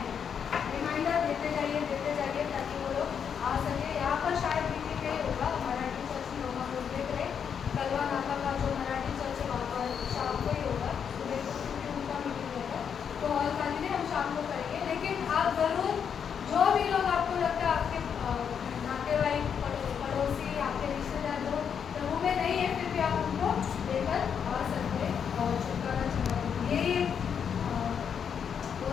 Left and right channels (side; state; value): right; quieter; 7.4 dB